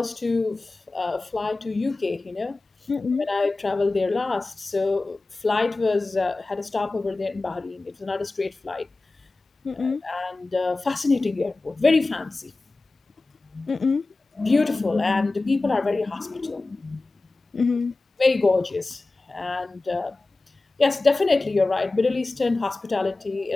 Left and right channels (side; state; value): right; quieter; 3.3 dB